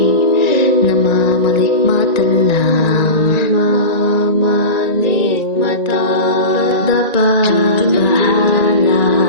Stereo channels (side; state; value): right; late; 1.9 ms